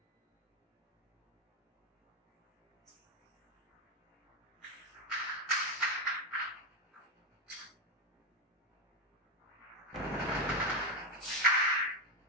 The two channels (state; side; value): normal; both; correlation 0.08